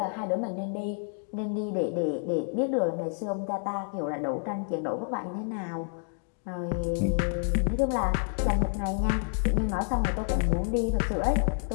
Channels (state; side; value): silent; right; 57 dB below the other